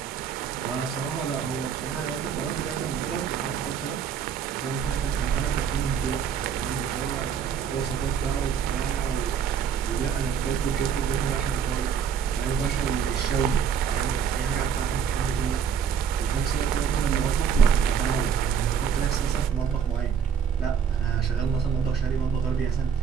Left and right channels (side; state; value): left; quieter; 7.6 dB